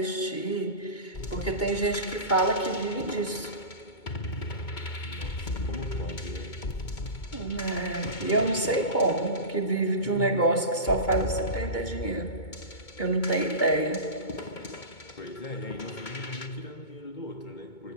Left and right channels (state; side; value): late; right; 2.2 ms